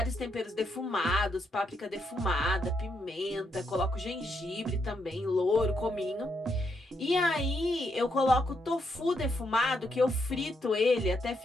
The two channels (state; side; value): normal; both; correlation 0.78